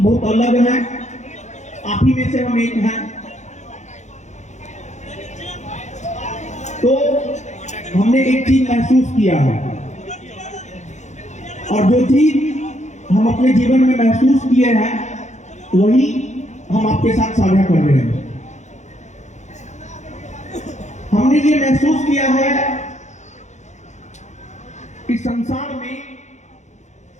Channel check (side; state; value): right; late; 0.34 ms